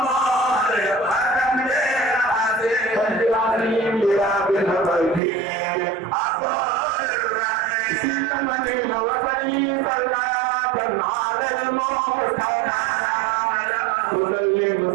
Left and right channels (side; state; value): left; drops out; at 5.2 s